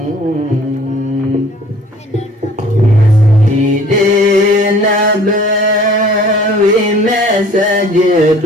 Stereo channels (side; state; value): both; normal; correlation 0.51